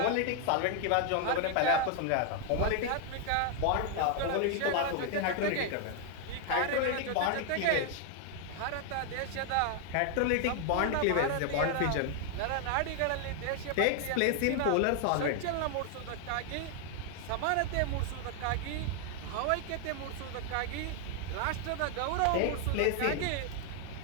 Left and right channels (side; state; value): both; different; correlation 0.00